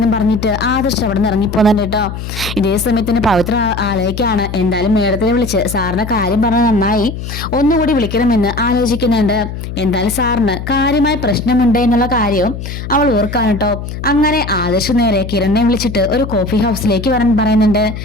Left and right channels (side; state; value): left; noise; hum, 8 dB below the sound